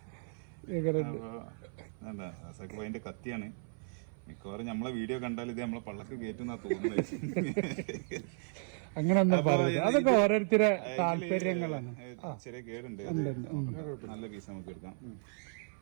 റസാഖ് ഭായിന്റെ കത്തിയാണ്. മിക്കവാറും നമ്മളെ വീഡിയോ കണ്ടാൽ ഇത് നമ്മളെ പള്ളക്ക് കയറ്റുന്നാ തോന്നുന്നത്. അങ്ങനെ ഒന്നും പറയില്ല, അതൊക്കെ ഓരോരുത്തരെ താല്പര്യങ്ങളാണ്. ചെറിയ കേടുണ്ട്, നല്ല പീസ് നമുക്ക് എടുക്കാം.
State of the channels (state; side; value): silent; left; 55 dB below the other